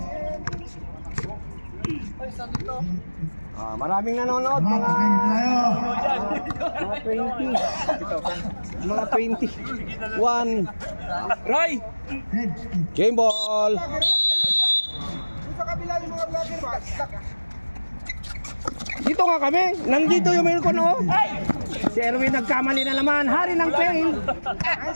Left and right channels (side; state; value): both; inverted; correlation -1.00